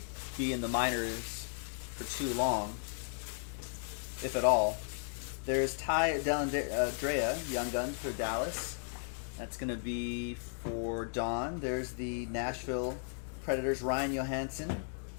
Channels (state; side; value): silent; right; digital silence